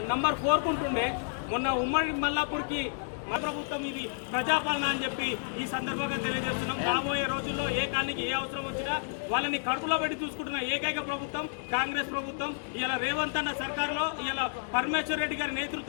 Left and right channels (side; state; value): right; silent; digital silence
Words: నంబర్ 4 ఉంటుండే, మొన్న ఉమ్మడి మల్లాపూర్కి మన ప్రభుత్వం ఇది ప్రజాపాలన అని చెప్పి ఈ సందర్భంగా తెలియజేస్తున్నాం. రాబోయే రోజుల్లో ఏ కాలనీకి ఏ అవసరం వచ్చినా వాళ్ళని కడుపులో పెట్టి చూసుకుంటున్న ఏకైక ప్రభుత్వం కాంగ్రెస్ ప్రభుత్వం. ఇలా రేవంత్ అన్న సర్కార్లో ఇలా పరమేశ్వర్ రెడ్డి గారి